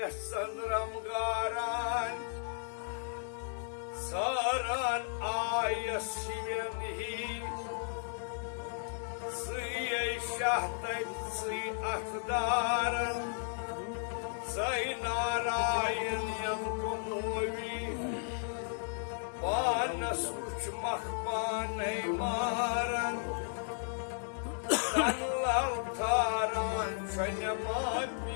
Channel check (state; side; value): silent; right; digital silence